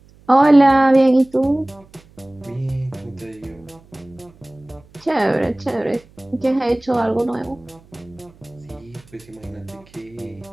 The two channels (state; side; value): noise; right; hum, 27 dB below the sound